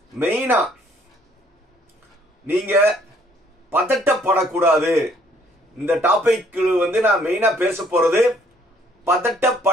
மெயினா நீங்க பதட்டப்படக்கூடாது. இந்த டாபிக் வந்து நான் மெயினா பேச போறது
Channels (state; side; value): normal; both; correlation 0.63